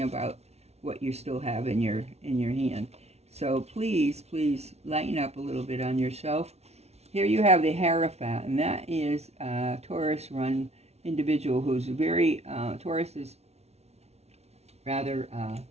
about what you still have in your hand. So please lighten up a little bit on yourself. Here you have the Hierophant, and that is a Taurus run individual who's very Taurus is rather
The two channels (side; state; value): left; late; 0.31 ms